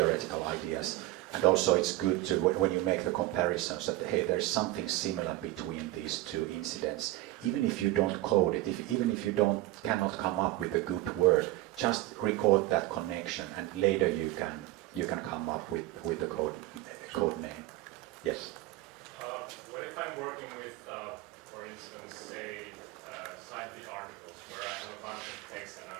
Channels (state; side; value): quieter; left; 17.4 dB